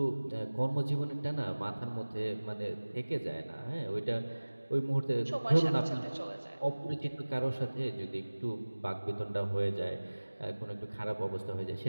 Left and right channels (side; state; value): both; inverted; correlation -1.00